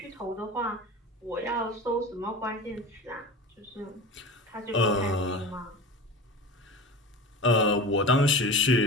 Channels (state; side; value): normal; both; correlation 0.32